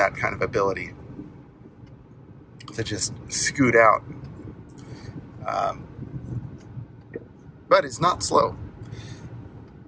kind of ability to just scoot out. But it's not slow.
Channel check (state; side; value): identical; both; correlation 1.00